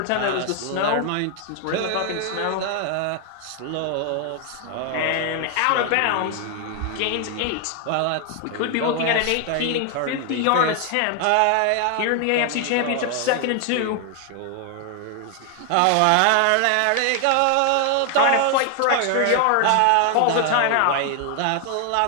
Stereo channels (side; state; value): both; different; correlation 0.00